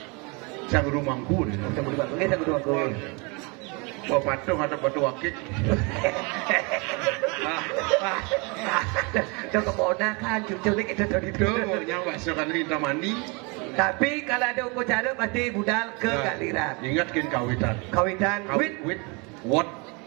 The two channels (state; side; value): quieter; left; 30.1 dB